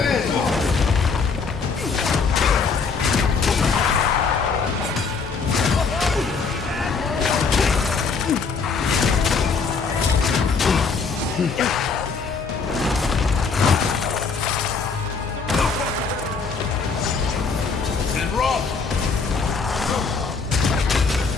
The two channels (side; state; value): right; quieter; 5.0 dB